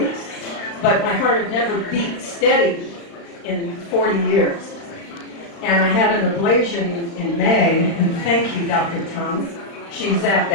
But my heart had never beat steady in 40 years. And I had an ablation in May, and thank you, Dr. Tom. She's at the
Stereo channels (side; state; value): right; late; 35 ms